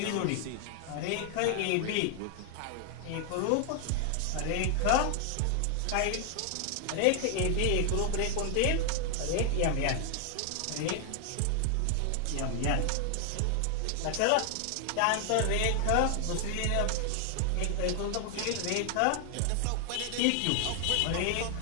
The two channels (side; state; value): both; different; correlation 0.00